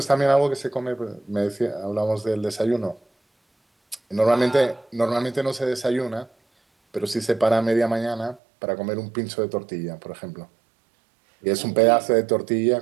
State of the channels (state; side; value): drops out; left; at 8.4 s